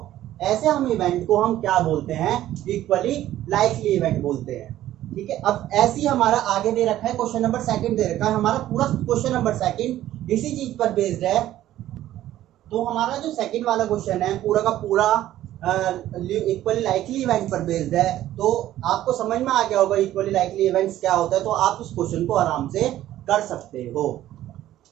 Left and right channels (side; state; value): left; quieter; 13.4 dB